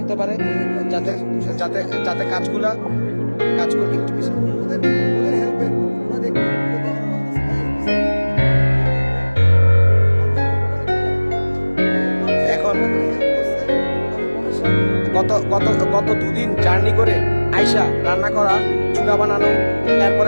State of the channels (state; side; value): inverted; both; correlation -1.00